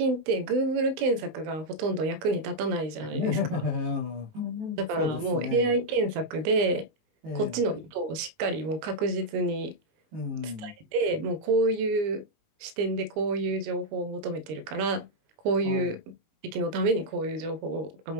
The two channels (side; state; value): left; late; 19 ms